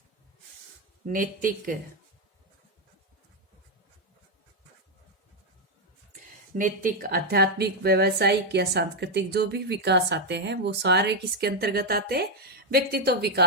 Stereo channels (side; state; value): both; normal; correlation 0.02